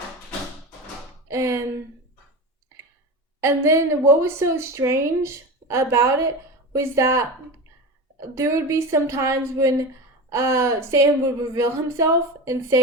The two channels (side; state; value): both; normal; correlation 0.26